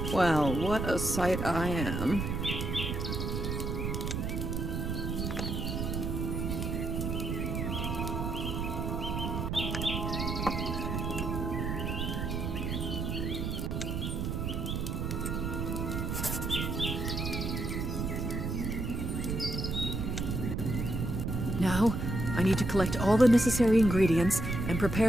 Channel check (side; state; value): right; noise; rumble, 2 dB below the sound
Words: Well, what a sight I am. Now, I need to collect all the necessary ingredients and